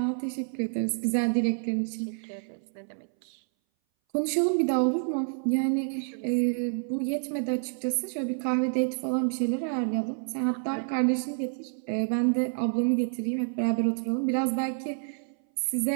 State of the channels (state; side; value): silent; left; 59 dB below the other